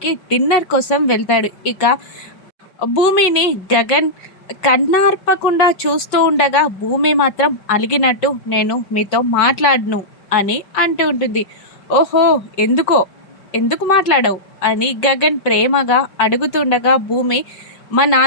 డిన్నర్ కోసం వెళ్తాడు. ఇక భూమిని గగన్ కన్నార్పకుండా చూస్తూ ఉండగా భూమి మాత్రం అలిగినట్టు నేను మీతో మాట్లాడను అని అంటూ ఉంటుంది. ఓహో, ఎందుకు మాట్లాడవు అని గగన్ ప్రేమగా అడుగుతుండగా భూమి, మా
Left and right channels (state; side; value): late; right; 5.4 ms